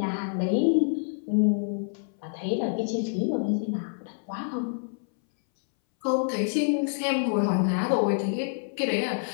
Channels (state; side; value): silent; right; 60 dB below the other